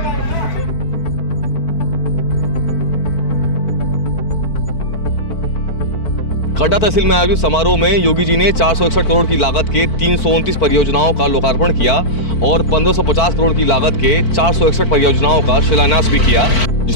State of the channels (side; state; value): right; late; 4.5 ms